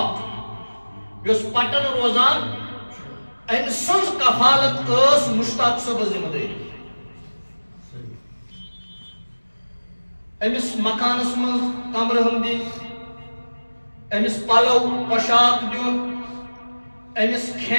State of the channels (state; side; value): inverted; both; correlation -1.00